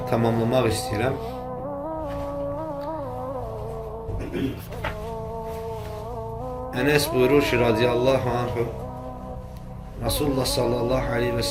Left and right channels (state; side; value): identical; both; correlation 1.00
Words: tamamlamaq istəyirəm. Enes buyurur ki, radiyallahu anhu, Resulullah sallallahu aleyhi ve